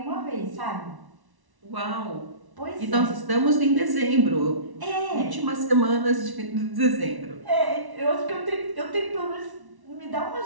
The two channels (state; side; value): late; left; 1.1 ms